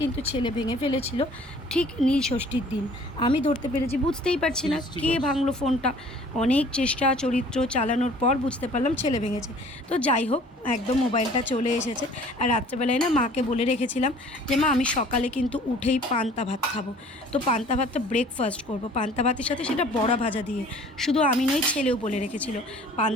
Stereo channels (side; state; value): both; normal; correlation 0.52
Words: ছেলে ভেঙে ফেলেছিল ঠিক নীল ষষ্ঠীর দিন। আমি ধরতে পেরেছি, বুঝতেই পারছি না কে ভাঙলো ফোনটা। অনেক চেষ্টা চরিত্র চালানোর পর বুঝতে পারলাম ছেলে ভেঙেছে। তো যাই হোক, একদম মোবাইলটা চলে এসেছে। আর রাত্রেবেলায় না মাকে বলে রেখেছিলাম যে মা আমি সকালে কিন্তু উঠেই পান্তা ভাত খাবো। তো পান্তা ভাতটা ব্রেকফাস্ট করবো পান্তা ভাতের সাথে, সেটা বড়া ভাজা দিয়ে। শুধু আমি নই, ছেলেও বলে রেখেছিল